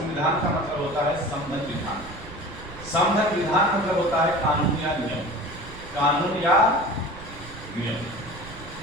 का मतलब होता है संबंध विधान। संबंध विधान मतलब होता है कानून या नियम, कानून या नियम।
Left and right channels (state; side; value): noise; right; rumble, 15 dB below the sound